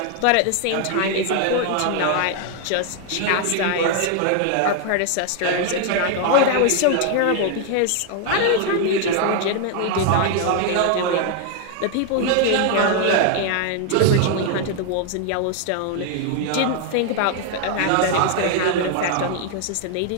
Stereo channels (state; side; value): different; both; correlation 0.00